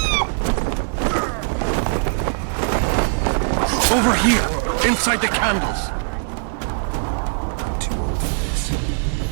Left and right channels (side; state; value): left; silent; 63 dB below the other